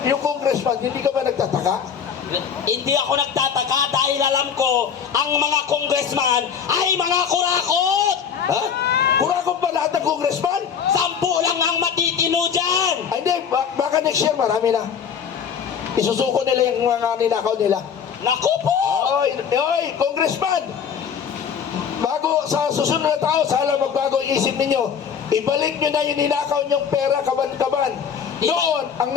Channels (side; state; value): right; quieter; 7.4 dB